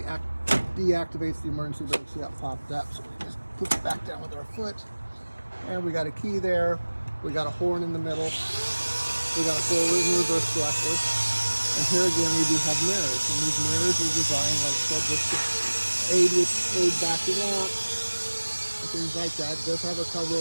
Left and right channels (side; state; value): both; inverted; correlation -1.00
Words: deactivates the emergency brake. See that popped up, so we just push it back down with our foot. And we got a key there. We got a horn in the middle. We got a forward and reverse selector. And here again, we do have mirrors. And these mirrors are designed, like I said, just to aid backing up and things like that. It does have a cover